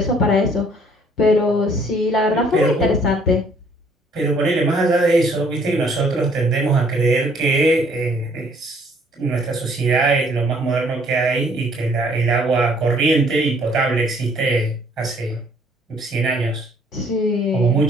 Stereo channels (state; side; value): normal; both; correlation 0.61